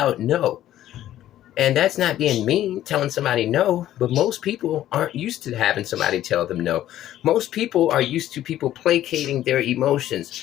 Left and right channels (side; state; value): right; quieter; 12.9 dB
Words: no. And that's not being mean, telling somebody no, but most people aren't used to having somebody tell them no. Most people are used to people placating their